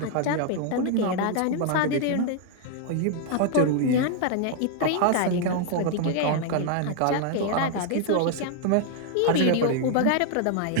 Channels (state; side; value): different; both; correlation 0.00